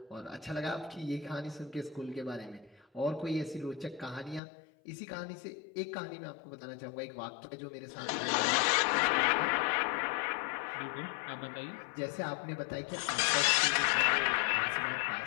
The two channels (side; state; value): right; drops out; at 4.4 s